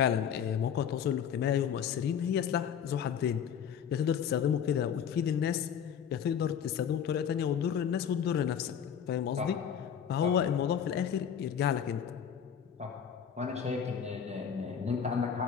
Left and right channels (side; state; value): right; quieter; 8.1 dB